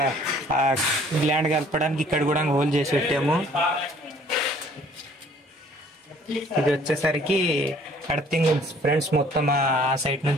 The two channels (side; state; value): both; normal; correlation 0.56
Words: గ్లాండ్ కలపడానికి ఇక్కడ కూడా హోల్ చేసి పెట్టాము. ఇది వచ్చేసరికి అర్థింగ్ ఫ్రెండ్స్. మొత్తం ఆ సైడ్